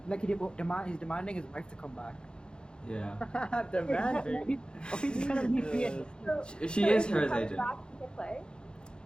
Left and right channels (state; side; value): late; right; 0.050 ms